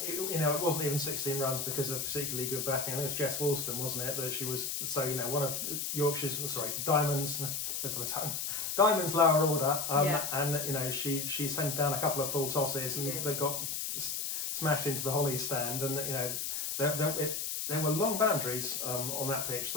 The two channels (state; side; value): noise; left; hiss, 2 dB below the sound